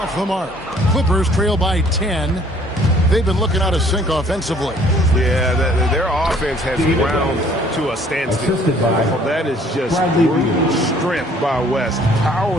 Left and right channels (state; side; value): normal; both; correlation 0.58